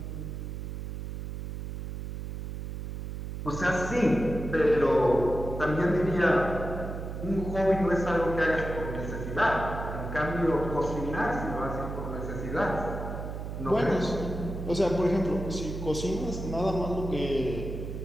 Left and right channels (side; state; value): right; noise; hum, 6 dB below the sound